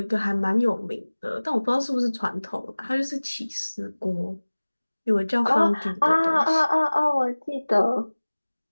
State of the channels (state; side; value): inverted; both; correlation -1.00